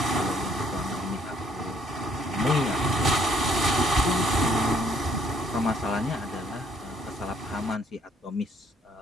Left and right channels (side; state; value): both; normal; correlation 0.65